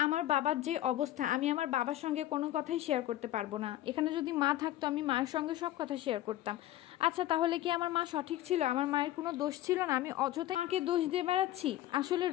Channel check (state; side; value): quieter; right; 14.3 dB